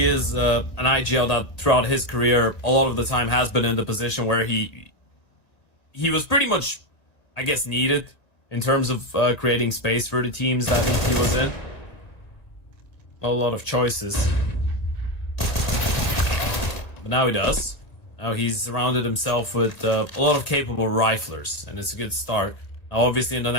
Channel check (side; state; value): right; late; 1.9 ms